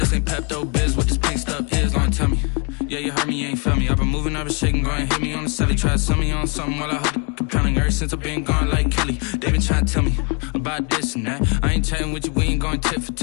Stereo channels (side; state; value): right; quieter; 34.9 dB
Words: This ain't Pepto-Biz, what this pink stuff is, don't tell me. Yeah, you heard me, you ain't felt me. I've been moving, I've been shaking, go and hit me on the celly. Try to sell me on something while I hold it compelling. Ever since I've been gone like Kelly, they been trying to tell me about this and that. I ain't chatting with you, we ain't going tit for